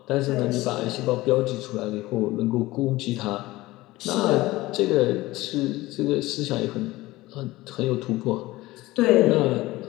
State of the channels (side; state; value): right; quieter; 18.7 dB